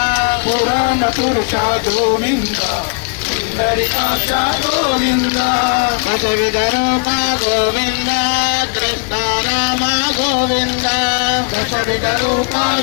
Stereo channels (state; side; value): quieter; right; 33.4 dB